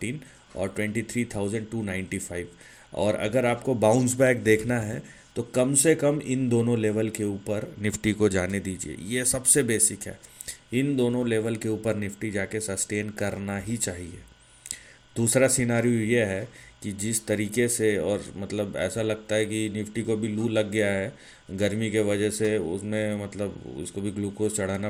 और 23,295। और अगर आपको बाउंस बैक देखना है तो कम से कम इन दोनों लेवल के ऊपर निफ्टी को जाने दीजिए, ये सबसे बेसिक है। इन दोनों लेवल के ऊपर निफ्टी जाके सस्टेन करना ही चाहिए। दूसरा सिनारियो ये है कि जिस तरीके से, और मतलब ऐसा लगता है कि निफ्टी को भी लू लग गया है गर्मी के वजह से, उसमें मतलब उसको भी ग्लूकोज चढ़ाना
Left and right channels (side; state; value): both; identical; correlation 1.00